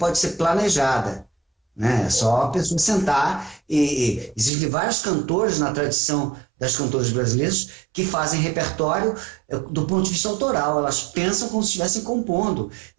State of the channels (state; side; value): drops out; left; at 4.5 s